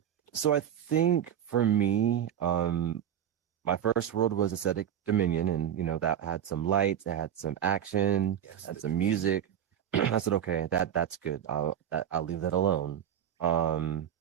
so I think for me, my first world was Aesthetic Dominion, and that had some lights, it had some action, Yes, had the some Dominion. music. I said, okay, that's good. I'll leave that alone. Um,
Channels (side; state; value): left; quieter; 9.8 dB